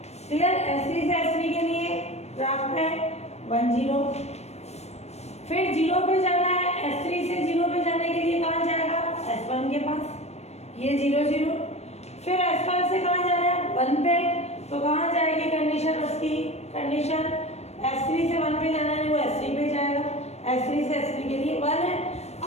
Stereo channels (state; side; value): late; right; 0.31 ms